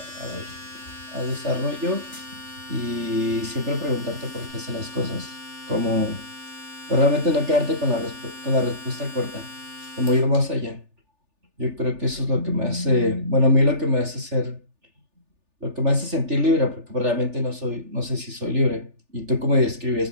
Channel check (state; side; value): late; left; 3.4 ms